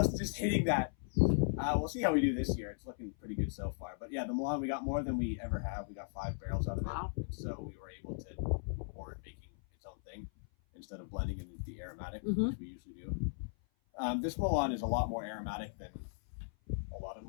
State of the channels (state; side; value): silent; right; 53 dB below the other